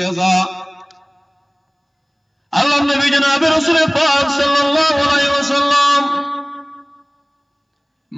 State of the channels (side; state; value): both; identical; correlation 1.00